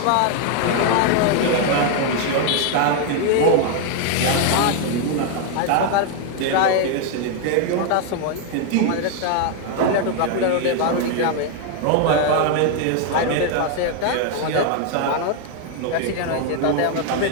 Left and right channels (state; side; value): different; both; correlation 0.00